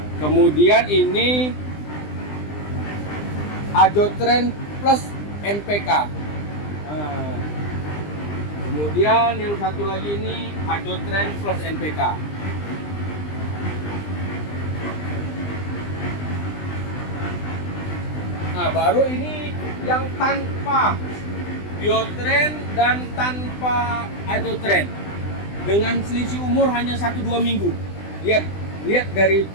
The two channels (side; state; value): right; late; 20 ms